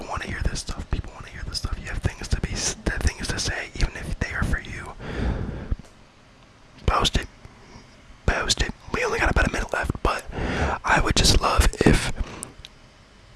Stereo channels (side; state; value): both; identical; correlation 1.00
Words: want to hear this stuff. People want to hear this stuff. You have things to say, even if they are for you. Post it. We only got about a minute left, but I would just love if